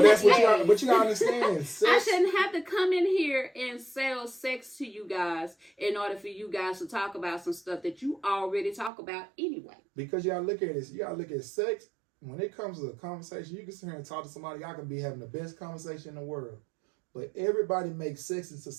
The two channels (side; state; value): left; drops out; at 8.9 s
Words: that's what you gotta understand. Sex, I shouldn't have to come in here and sell sex to you guys in order for you guys to talk about some stuff that you already talk about anyway. because you gotta look at this. You gotta look at sex. When it comes to a conversation, you can sit here and talk to somebody. Y'all can be having the best conversation in the world, but everybody makes sex into